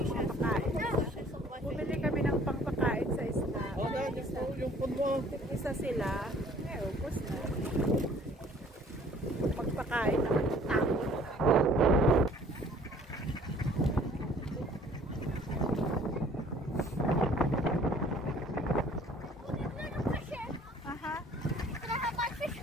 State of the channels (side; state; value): both; normal; correlation 0.54